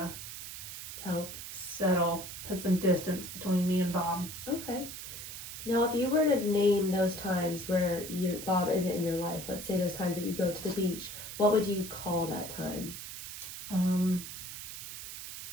Help. put some distance between me and Bob. Okay. Now, if you were to name those times where Bob isn't in your life, let's say those times that you go to the beach, what would you call that time?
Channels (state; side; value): noise; right; hiss, 9 dB below the sound